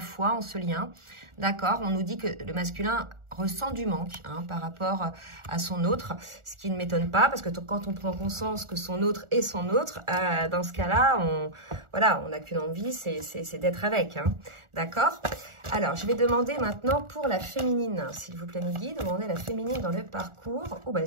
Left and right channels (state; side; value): late; left; 1.4 ms